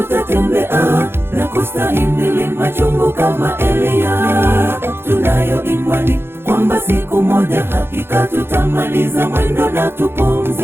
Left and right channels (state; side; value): late; left; 0.11 ms